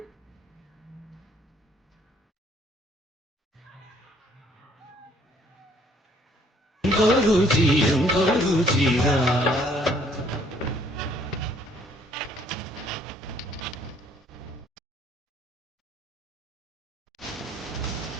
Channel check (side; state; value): both; normal; correlation 0.62